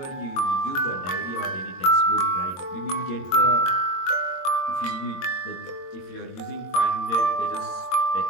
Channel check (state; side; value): late; right; 22 ms